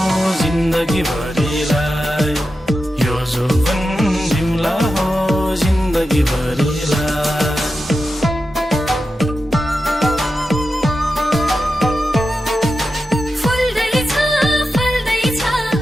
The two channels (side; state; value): both; normal; correlation 0.90